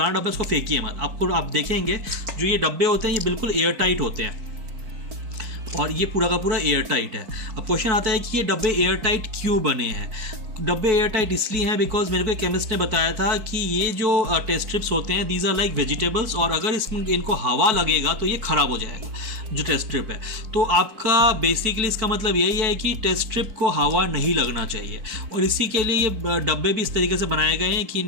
डब्बा है उसको फेंकिए मत। आप देखेंगे जो ये डब्बे होते हैं ये बिल्कुल एयर टाइट होते हैं और ये पूरा का पूरा एयर टाइट है। अब क्वेश्चन आता है कि ये डब्बे एयर टाइट क्यों बने हैं। डब्बे एयर टाइट इसलिए हैं बिकॉज मेरे को एक केमिस्ट ने बताया था कि ये जो टेस्ट स्ट्रिप्स होते हैं दीज आर लाइक वेजिटेबल्स और अगर इनको हवा लगेगा तो ये ख़राब हो जाएगा जो टेस्ट स्ट्रिप है। तो आपका बेसिकली इसका मतलब यही है कि टेस्ट स्ट्रिप को हवा नहीं लगना चाहिए और इसी के लिए ये डब्बे भी इस तरीके से बनाए गए हैं कि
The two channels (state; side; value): late; left; 4.5 ms